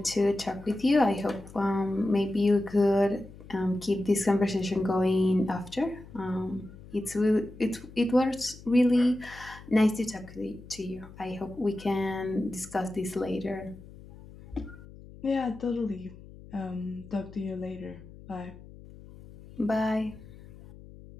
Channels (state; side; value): noise; left; hum, 18 dB below the sound